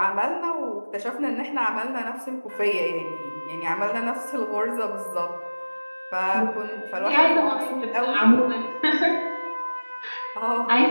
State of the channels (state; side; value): inverted; both; correlation -1.00